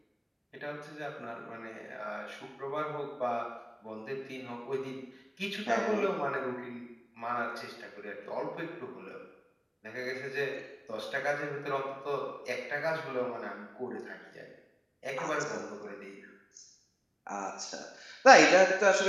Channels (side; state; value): both; identical; correlation 1.00